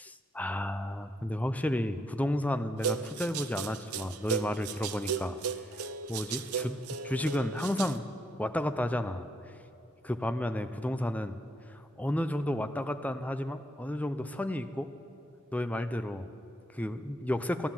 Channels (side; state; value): both; normal; correlation 0.76